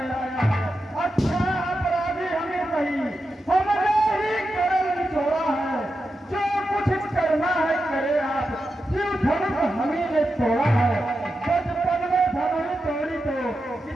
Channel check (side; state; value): both; normal; correlation 0.89